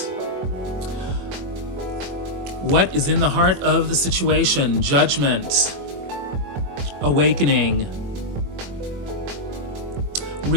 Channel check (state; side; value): late; left; 22 ms